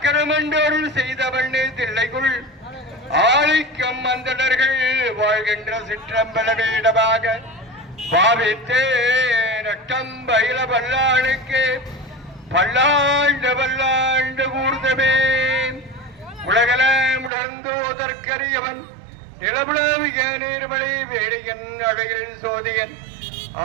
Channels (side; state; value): left; drops out; at 17.3 s